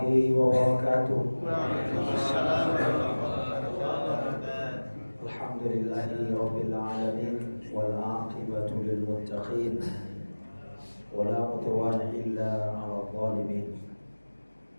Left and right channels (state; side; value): inverted; both; correlation -1.00